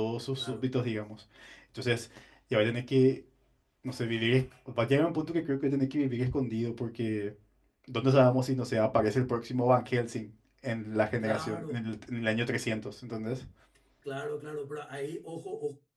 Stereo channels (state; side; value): identical; both; correlation 1.00